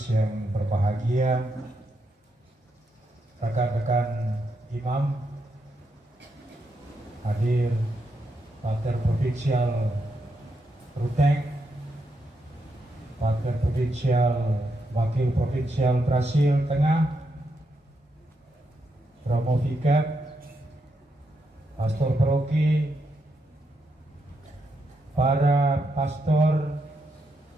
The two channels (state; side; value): normal; both; correlation 0.81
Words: yang berbahagia, rekan-rekan imam, hadir Pater Provinsial Ruteng, Pater Provinsial Wakil Provinsial Brasil Tengah, Romo Vikat, Pastor Paroki, para pastor,